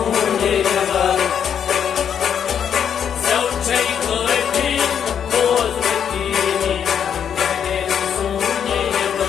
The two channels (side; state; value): right; quieter; 8.3 dB